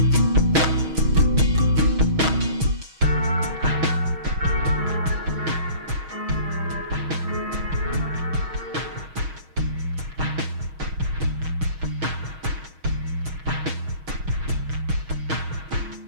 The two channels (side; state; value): left; late; 6.3 ms